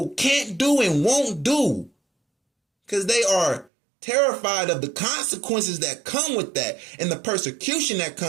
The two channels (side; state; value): left; drops out; at 3.7 s